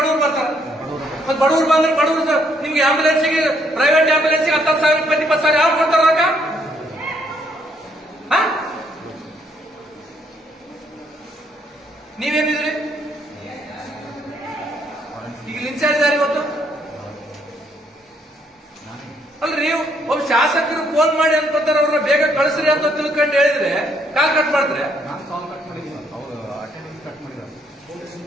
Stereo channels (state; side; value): normal; both; correlation 0.70